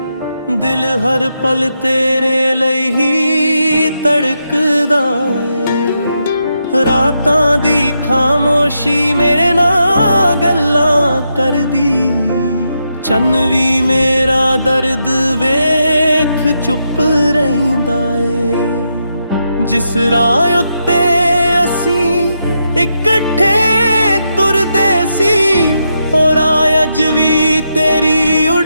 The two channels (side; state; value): both; inverted; correlation -0.83